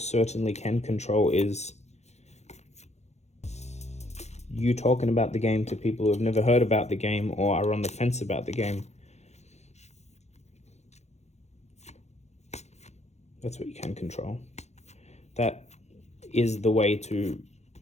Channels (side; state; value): right; late; 0.32 ms